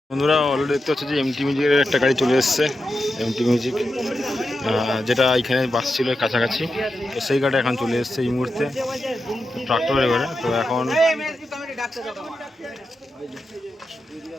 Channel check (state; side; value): normal; both; correlation 0.89